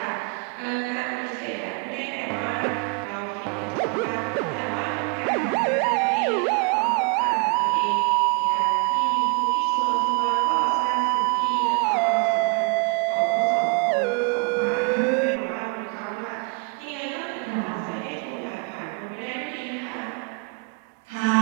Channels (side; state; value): left; quieter; 33.9 dB